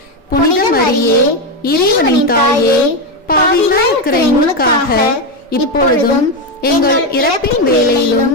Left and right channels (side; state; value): both; normal; correlation 0.09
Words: புனித மரியே, இறைவனின் தாயே, பாவிகளாய் இருக்கிற எங்களுக்காக இப்பொழுதும் எங்கள் இறப்பின் வேளையிலும்